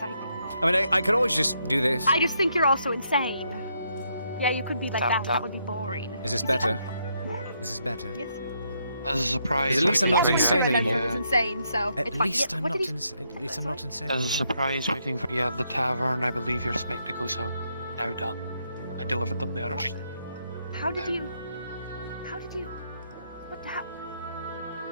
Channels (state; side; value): inverted; both; correlation -0.76